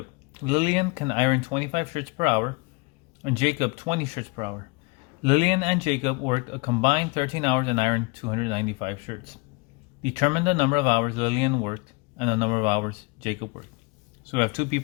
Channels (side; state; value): right; quieter; 28.1 dB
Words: Lillian can iron 25 shirts per hour and Jacob 20 shirts per hour. Lillian and Jacob worked a combined 13 hours and ironed 295 shirts. Determine the number of hours Lillian worked and the number of hours Jacob worked. So we have two